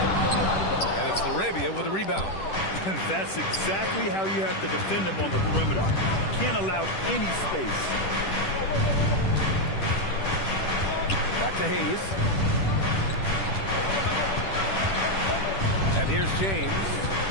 And it's Laravia with a rebound. That's exactly how you have to defend him on the perimeter. Can't allow any space. Back to Hayes. And here's James.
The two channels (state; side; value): late; right; 10 ms